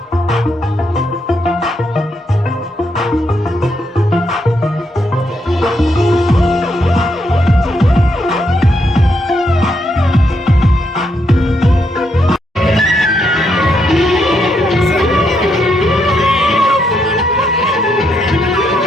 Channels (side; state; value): both; normal; correlation 0.78